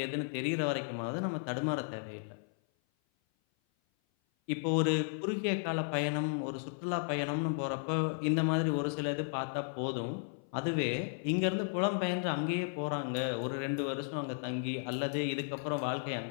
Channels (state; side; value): silent; right; 55 dB below the other